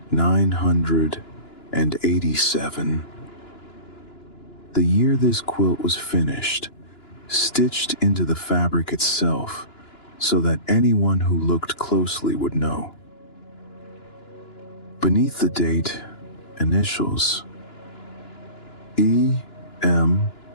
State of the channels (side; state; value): right; late; 2.9 ms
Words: The year this quilt was finished, stitched into the fabric itself, so that anyone who looked closely would know. Beneath the date, initials. E.M.H.